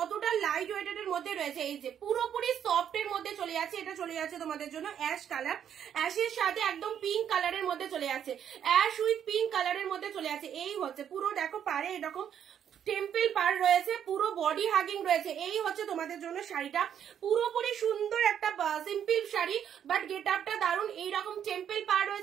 লাইট ওয়েটেড এর মধ্যে রয়েছে। এই যে পুরোপুরি সফট এর মধ্যে চলে যাচ্ছে। এটা চলে যাচ্ছে তোমাদের জন্য অ্যাশ কালার, অ্যাশের সাথে একদম পিঙ্ক কালারের মধ্যে চলে যাচ্ছে, অ্যাশ উইথ পিঙ্ক কালারের মধ্যে চলে যাচ্ছে। এই হচ্ছে পুরো দেখো পারে এরকম টেম্পল পার রয়েছে, পুরো বডি হাগিং রয়েছে। এই হচ্ছে তোমাদের জন্য শাড়িটা, পুরোপুরি সুন্দর একটা সিম্পল শাড়ি, বাট গেট আপটা দারুন। এইরকম টেম্পল পার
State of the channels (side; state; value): left; quieter; 9.1 dB